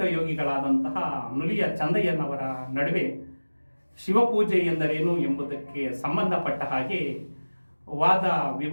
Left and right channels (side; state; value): both; inverted; correlation -1.00